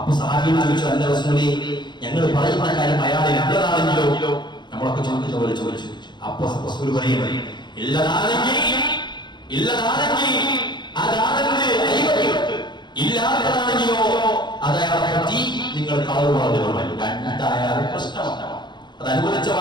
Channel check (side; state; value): right; late; 0.21 ms